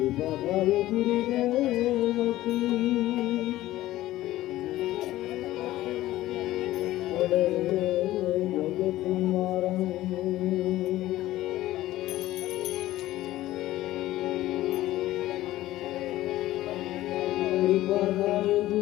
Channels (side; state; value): right; quieter; 15.6 dB